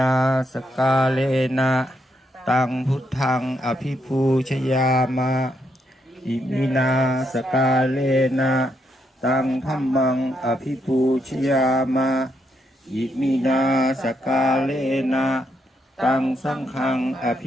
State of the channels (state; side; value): normal; both; correlation 0.78